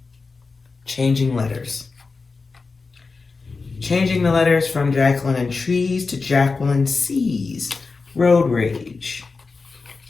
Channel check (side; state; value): right; quieter; 4.3 dB